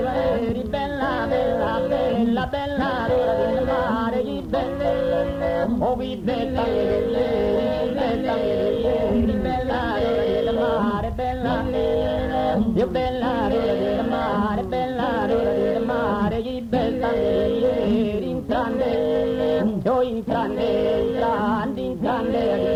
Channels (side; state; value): both; identical; correlation 1.00